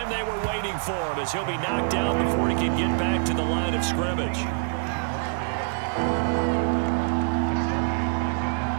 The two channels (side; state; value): left; silent; 61 dB below the other